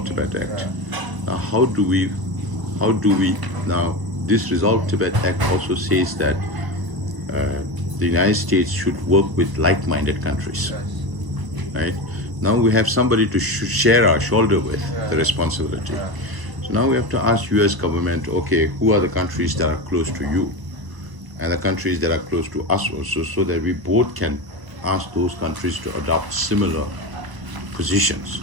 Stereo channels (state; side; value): late; left; 1.0 ms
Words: Tibet Act. Now how do we, now this Resolve Tibet Act also says that the United States should work with like-minded countries, right? Now we have somebody to share our shoulder with the responsibility. So now we have to ask US government, okay, who are the countries that are close to you and the countries that are close to us also, so that we both can ask those countries to adopt similar positions,